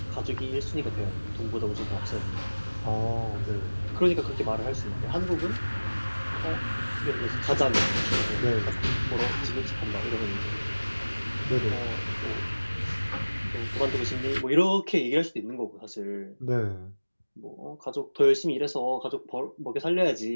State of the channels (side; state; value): both; inverted; correlation -1.00